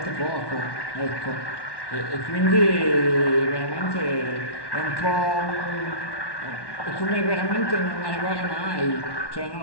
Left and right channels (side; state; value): right; late; 1.1 ms